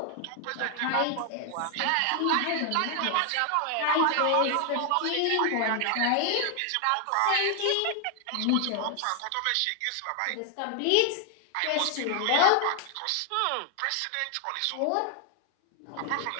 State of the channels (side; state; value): both; different; correlation 0.00